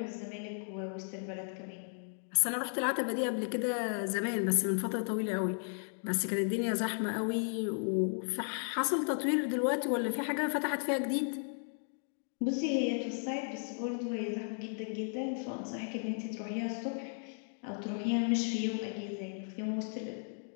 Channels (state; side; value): silent; right; 54 dB below the other